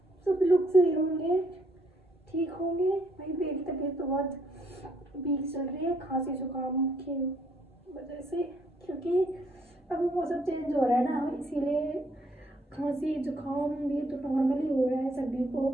सभी लोग सही होंगे, ठीक होंगे। भाई मेरी तबीयत तो बहुत वीक चल रही है, खांसी जुकाम की वजह से, क्योंकि अभी मौसम चेंज हो रहा है ना, इसीलिए खांसी जुकाम भी तो नॉर्मली हो रहा है सभी को।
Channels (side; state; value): both; normal; correlation 0.69